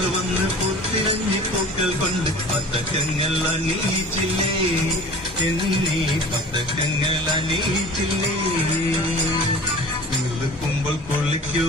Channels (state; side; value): normal; both; correlation 0.42